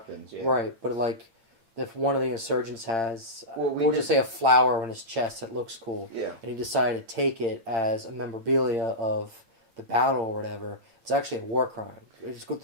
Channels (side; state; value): left; late; 8.8 ms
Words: right, but if one of the insurgents has, we'll just say a flower on his chest that looks cool, and he decided to take it as a memorabilia of the battle or whatever, it's actually a war crime. It's